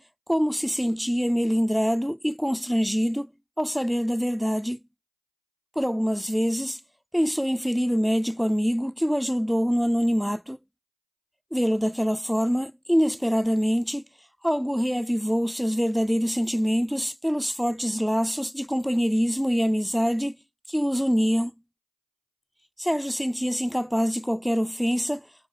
como se sentia melindrado e constrangido ao saber da verdade. Por algumas vezes pensou em ferir o médico amigo que o ajudou no anonimato. Vê-lo daquela forma, inesperadamente, algo reavivou seus verdadeiros sentimentos pelos fortes laços de companheirismo e amizade que os uniam. Sérgio sentia-se incapaz de qualquer ofensa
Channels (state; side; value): identical; both; correlation 1.00